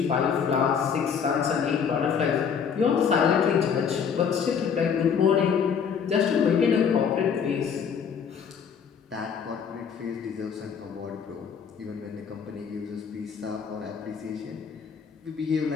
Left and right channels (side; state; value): right; quieter; 6.9 dB